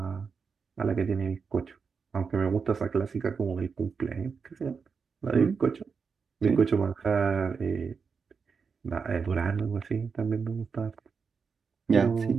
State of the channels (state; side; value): quieter; left; 5.6 dB